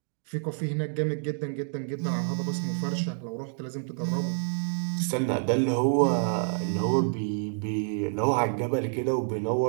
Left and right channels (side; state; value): left; silent; digital silence